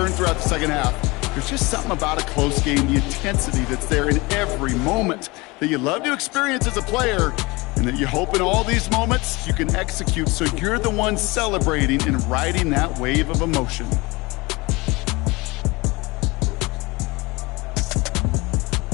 throughout the second half. There's just something about a close game, the intensity that's there in every moment that you love to experience as a player, and that you hope in all these moments you can execute so you're the one celebrating and riding that wave of emotion.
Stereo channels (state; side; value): quieter; right; 24.1 dB